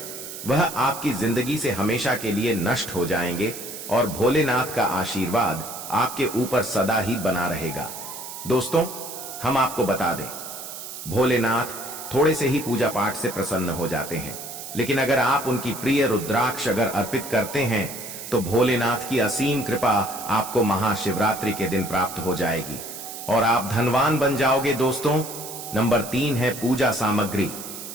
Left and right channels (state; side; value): noise; right; hiss, 10 dB below the sound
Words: वह आपकी जिंदगी से हमेशा के लिए नष्ट हो जाएंगे और भोलेनाथ का आशीर्वाद आपके ऊपर सदा ही बना रहेगा। दोस्तों, हम आपको बता दें, भोलेनाथ थोड़े से ही पूजा पाठ से प्रसन्न हो जाते हैं, लेकिन अगर आप उनकी प्रिय रुद्राक्ष अगर अर्पित करते हैं तो भोलेनाथ की असीम कृपा आपको महाशिवरात्रि के दिन प्राप्त हो जाएगी और आप धनवान बन जाओगे। दोस्तों, नंबर 3 है पूजा सामग्री।